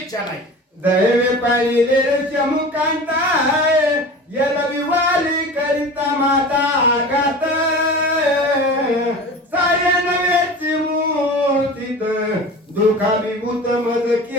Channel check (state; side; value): normal; both; correlation 0.36